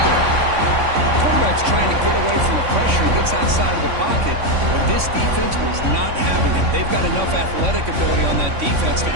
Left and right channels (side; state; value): left; late; 3.5 ms